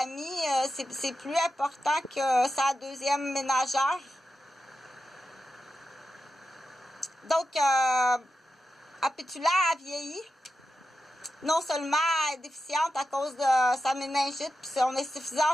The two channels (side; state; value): both; normal; correlation 0.90